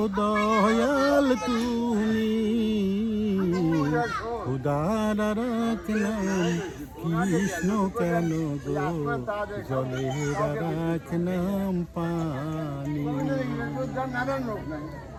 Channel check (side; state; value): both; identical; correlation 1.00